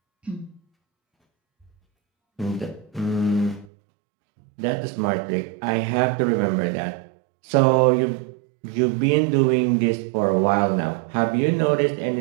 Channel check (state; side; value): drops out; left; at 3.7 s